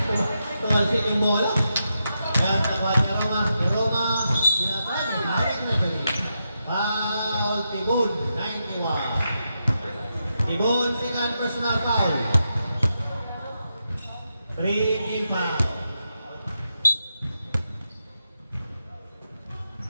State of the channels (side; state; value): both; inverted; correlation -0.85